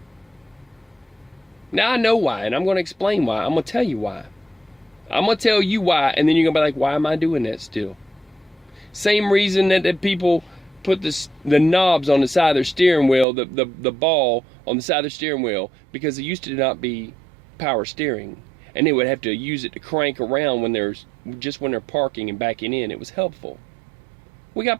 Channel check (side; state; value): left; drops out; at 13.2 s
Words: Now I know why, and I'm going to explain why. I'm going to tell you why. I'm going to tell you why, and then you're going to be like, why am I doing that still? Same reason that people put the knobs on the side of their steering wheel, the ball on the side of their steering wheel, because it used to not be power steering. And they would have to use it to crank around when they're parking and backing in. It was helpful. We